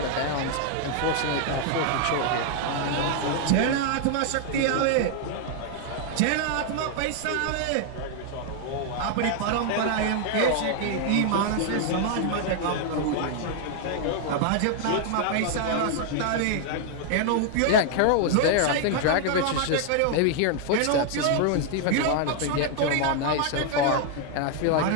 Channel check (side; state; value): both; different; correlation 0.00